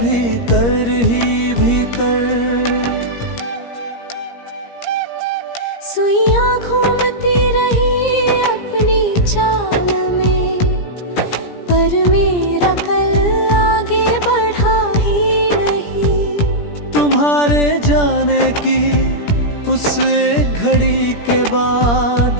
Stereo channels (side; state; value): right; late; 17 ms